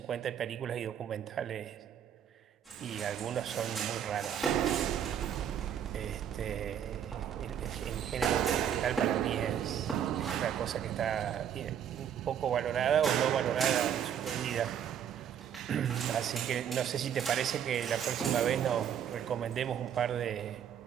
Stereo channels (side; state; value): left; quieter; 9.1 dB